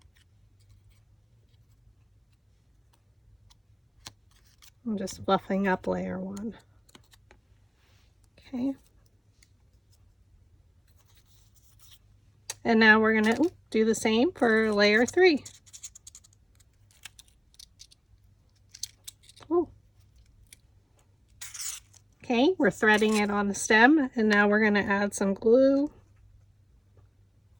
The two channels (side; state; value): both; identical; correlation 1.00